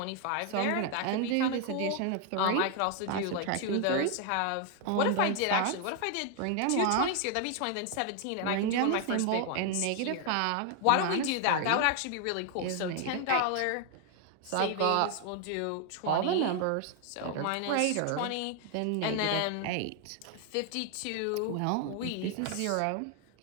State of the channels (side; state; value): both; different; correlation 0.00